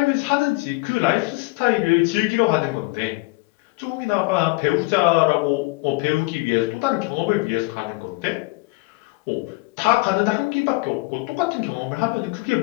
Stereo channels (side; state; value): right; quieter; 24.4 dB